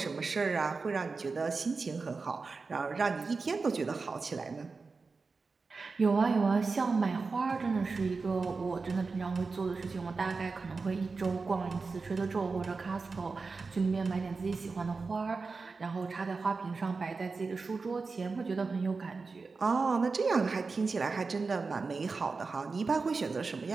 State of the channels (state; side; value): quieter; left; 4.3 dB